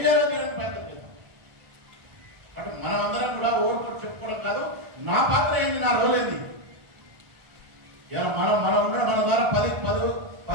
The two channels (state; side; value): late; left; 1.4 ms